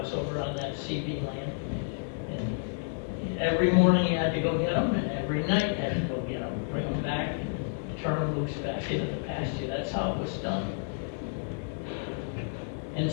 over on that CD land. And every morning you had to go get them, and every night you had to go get them, bring them back, and turn them loose back into the pasture. That's how it was done. And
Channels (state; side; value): silent; right; digital silence